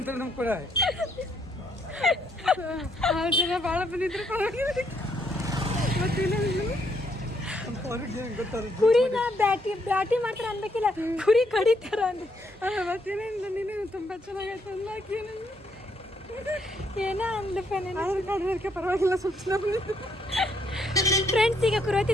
ನಮ್ ಕೂಡ. ಜನ ಭಾಳ ಬಂದಿದ್ರು ಕುರಿನ ಬ್ಯಾಟಿ ಬ್ಯಾಟಿ ಮಾಡ್ತಾರ ಅನ್ಬೇಕಿಲ್ಲ, ಕುರಿ ಕಡಿತಾರ ಅಂದ್ರೆ ಮತ್ತೇನಿಲ್ಲ. ನೀನು ತುಂಬಾ ಚೆನ್ನಾಗೈತೆ ಅನ್ಲಾಕಿ ಏನ ಅಂದಪ್ಪ. ಪರವಾಗಿಲ್ಲ ಸೂಚನೆ. ಫ್ರೆಂಡ್ಸ್, ಈಗ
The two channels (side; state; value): both; normal; correlation 0.73